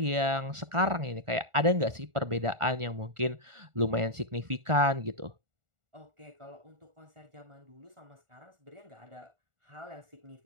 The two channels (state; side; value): late; left; 1.4 ms